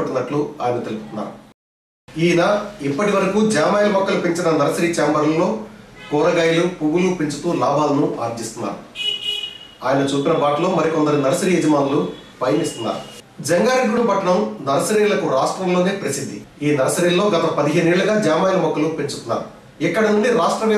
ఆయన తెలుపుతున్నారు. ఈయన ఇప్పటి వరకు జామాయిల మొక్కలు పెంచిన నర్సరీ ఛాంబర్లలో కూరగాయలు, పువ్వులు పెంచుతూ లాభాలను ఆర్జిస్తున్నారు. ఆయన చూపిన బాటలో మరికొందరు నర్సరీ యజమానులు పయనిస్తున్నారు. జంగారెడ్డిగూడెం పట్టణం నర్సరీలకు రాష్ట్రంలోనే ప్రసిద్ధి. ఈ నర్సరీల్లో గత 15 ఏళ్లుగా జామాయిల మొక్కలు పెంచుతున్నారు. ఇక్కడ నుండి రాష్ట్ర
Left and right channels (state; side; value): identical; both; correlation 1.00